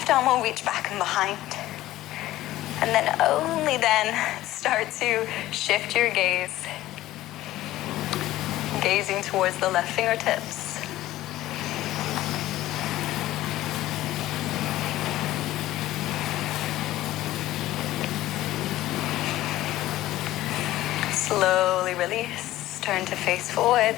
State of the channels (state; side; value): quieter; right; 15.4 dB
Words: arm will reach back and behind. And then only then start to shift your gaze. Gazing towards the left fingertips. Slowly release. Turn to face